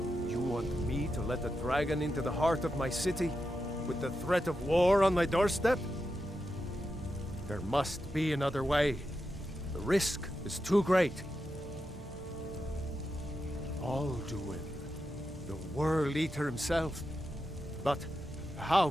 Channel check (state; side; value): normal; both; correlation 0.88